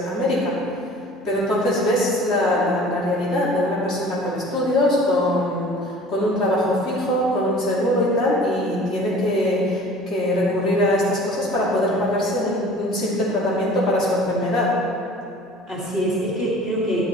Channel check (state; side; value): normal; both; correlation 0.46